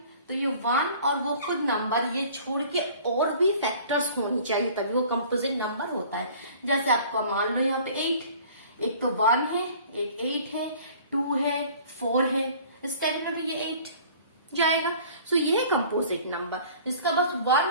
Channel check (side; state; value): both; inverted; correlation -0.49